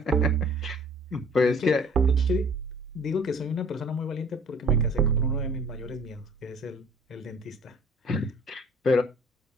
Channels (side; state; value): both; normal; correlation 0.53